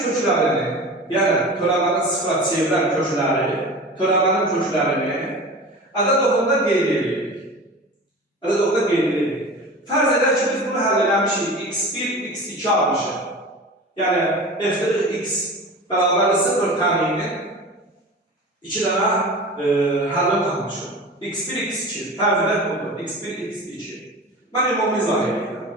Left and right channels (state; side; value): normal; both; correlation 0.34